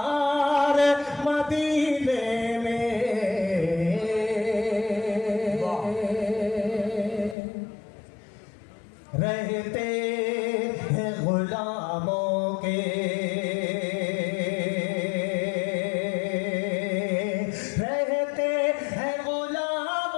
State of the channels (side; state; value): right; drops out; at 7.4 s